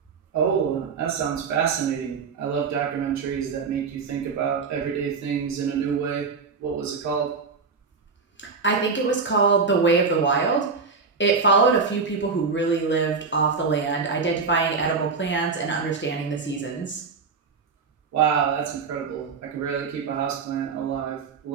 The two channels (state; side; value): quieter; left; 5.0 dB